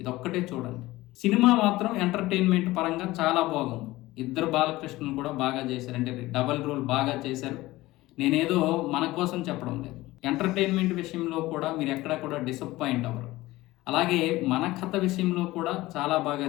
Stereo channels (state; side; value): quieter; right; 18.4 dB